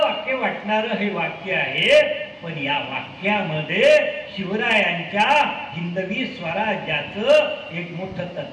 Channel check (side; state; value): both; identical; correlation 1.00